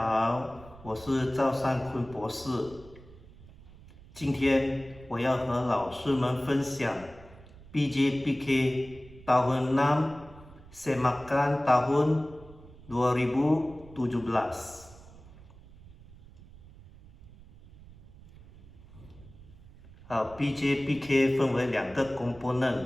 我是赵善坤博士。今天我要和老师们分享 PJPK tahun 6 Semakan tahun 2017。好，PJPK 分为2个 component，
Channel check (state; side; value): noise; right; rumble, 21 dB below the sound